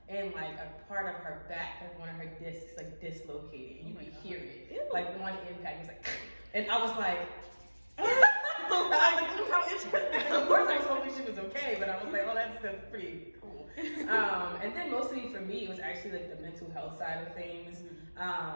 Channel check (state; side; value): inverted; both; correlation -1.00